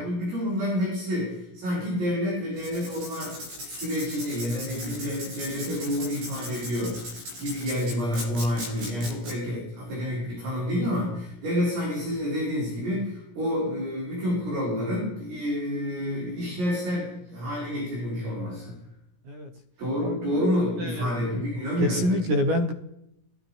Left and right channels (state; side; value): late; left; 17 ms